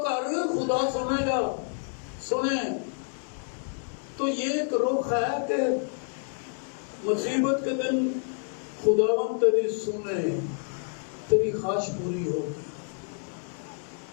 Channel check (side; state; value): right; silent; 59 dB below the other